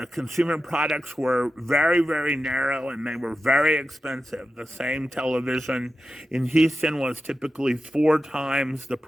consumer products were very, very narrow, and they were very expensive. The same television in Houston was typically 4 times the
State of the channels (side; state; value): both; normal; correlation 0.91